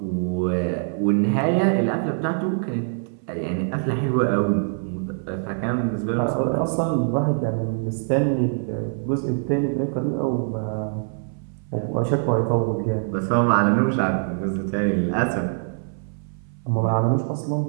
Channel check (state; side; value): silent; left; 61 dB below the other